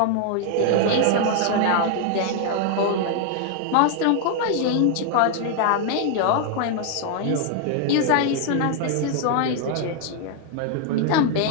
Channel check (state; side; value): different; both; correlation 0.00